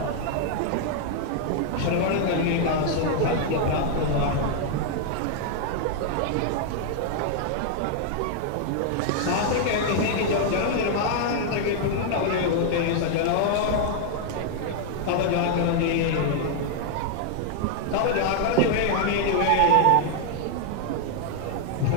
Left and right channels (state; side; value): different; both; correlation 0.00